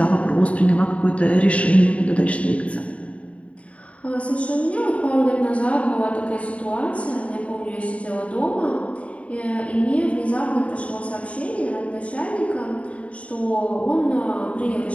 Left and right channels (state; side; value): late; right; 0.064 ms